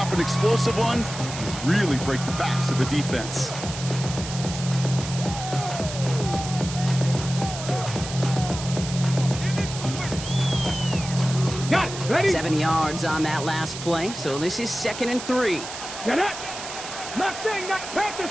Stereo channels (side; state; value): right; noise; hiss, 9 dB below the sound